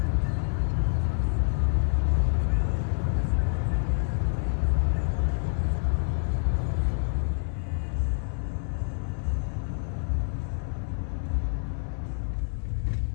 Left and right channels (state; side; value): silent; right; 60 dB below the other